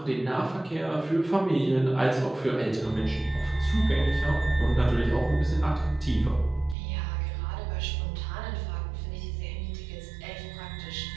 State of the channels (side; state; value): left; drops out; at 6.8 s